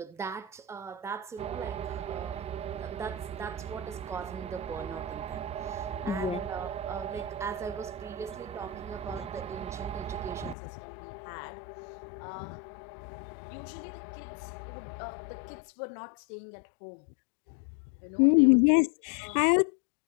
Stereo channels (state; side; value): drops out; right; at 10.6 s